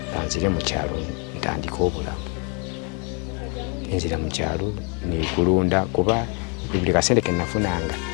nzire mu kyalo ntandika obulamu nzira mu kyalo nikulunda kuba buli kasente ke nafunanga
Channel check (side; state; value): right; quieter; 35.7 dB